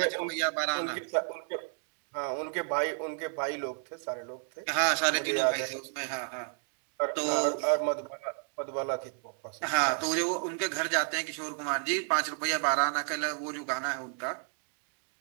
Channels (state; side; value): silent; left; 55 dB below the other